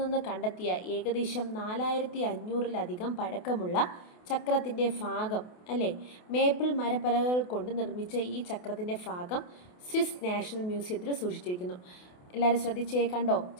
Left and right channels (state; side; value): late; right; 28 ms